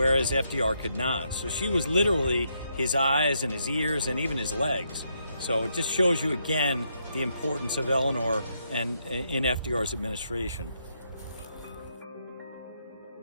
FDR could not. So she was literally his eyes and his ears and even his legs. So it just shows you again the importance of Eleanor and in FDR's administration.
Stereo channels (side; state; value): both; inverted; correlation -0.78